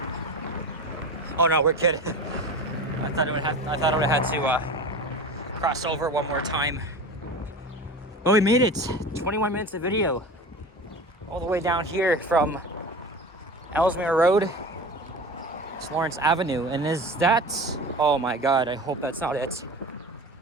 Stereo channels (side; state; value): both; normal; correlation 0.32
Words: oh no, we're good. I thought I would have to cross over one more time. But we made it. 21 minutes of video. All the way down here from Ellesmere Road to Lawrence Avenue. And is that... Oh my god, I hope that's not it.